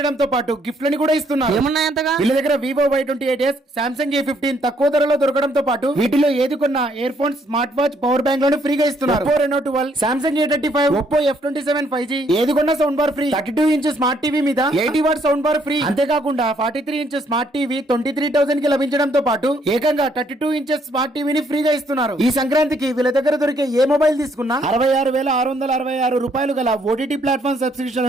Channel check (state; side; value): normal; both; correlation 0.69